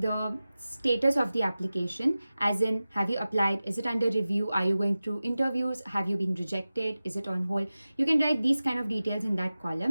status of the application, as in, have you applied, is it under review, are you going through interviews, have you been rejected, is it on hold. You can write these kind of details in that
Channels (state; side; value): inverted; both; correlation -0.96